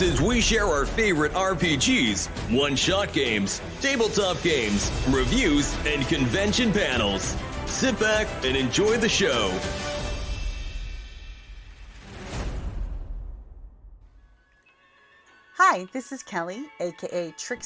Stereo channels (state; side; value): identical; both; correlation 1.00